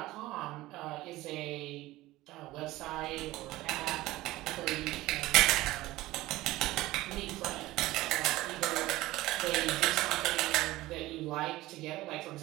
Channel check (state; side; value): quieter; left; 17.7 dB